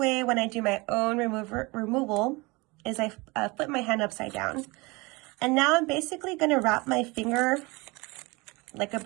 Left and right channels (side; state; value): left; quieter; 25.1 dB